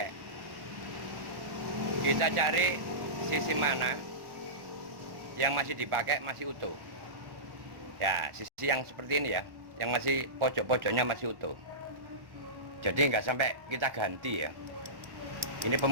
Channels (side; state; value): left; late; 1.1 ms